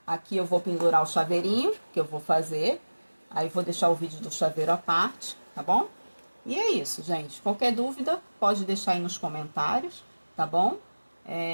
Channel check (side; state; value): both; inverted; correlation -1.00